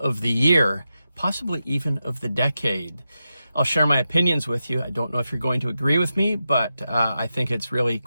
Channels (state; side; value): inverted; both; correlation -0.89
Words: the year, possibly even of the decade. I'll share my opinions with you. I don't know if you're going to agree with me, but I think it's really